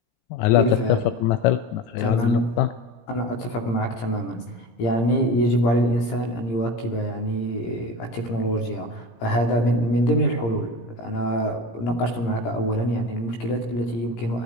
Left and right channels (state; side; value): late; right; 17 ms